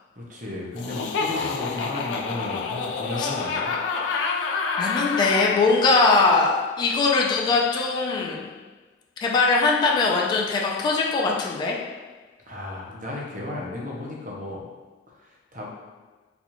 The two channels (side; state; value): right; quieter; 3.5 dB